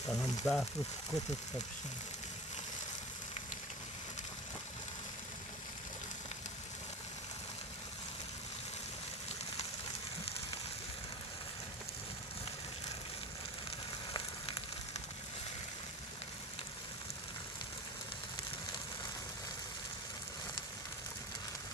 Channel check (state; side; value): normal; both; correlation 0.32